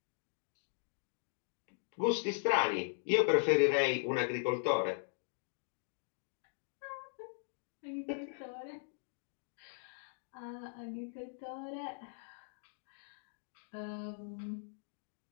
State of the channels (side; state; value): right; silent; digital silence